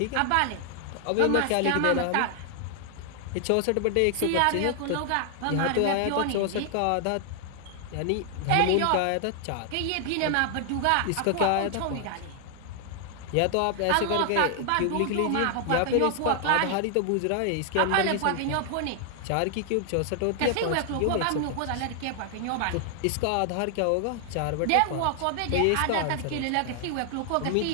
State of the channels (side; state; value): both; different; correlation 0.00